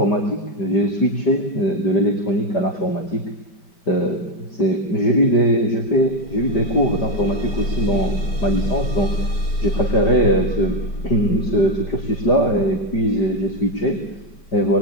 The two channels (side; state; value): right; late; 5.1 ms